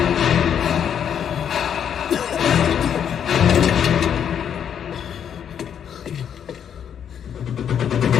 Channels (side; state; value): right; quieter; 8.6 dB